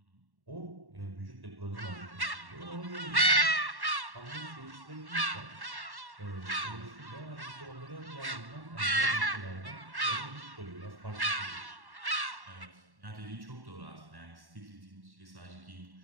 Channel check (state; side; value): late; left; 1.1 ms